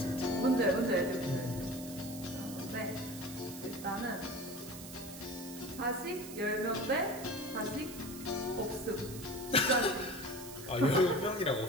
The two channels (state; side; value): noise; right; hiss, 13 dB below the sound